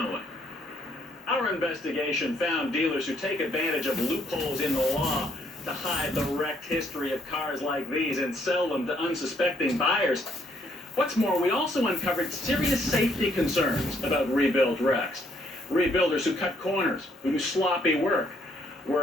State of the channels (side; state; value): both; normal; correlation 0.69